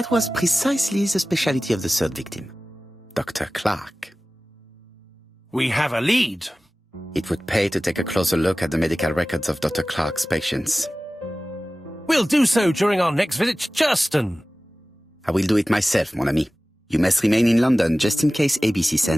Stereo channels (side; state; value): both; normal; correlation 0.97